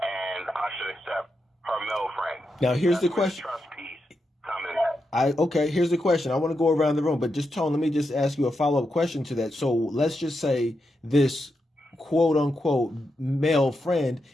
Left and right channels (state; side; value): normal; both; correlation 0.86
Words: and I should accept her male friend. Now here's the question. Trust piece coming in. Okay, here's the question. I want to go around the room, but just Tone, let me just ask you a follow-up question to that. So let's just say this quote unquote male friend